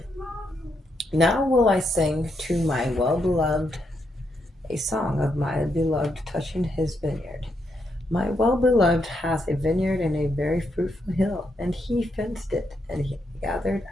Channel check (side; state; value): both; normal; correlation 0.80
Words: Now will I sing to my well-beloved a song of my beloved touching his vineyard. My well-beloved hath a vineyard in a very fruitful hill, and he fenced it, and he gathered